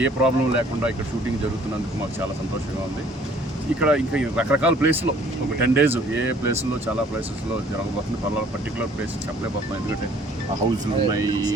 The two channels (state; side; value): normal; both; correlation 0.57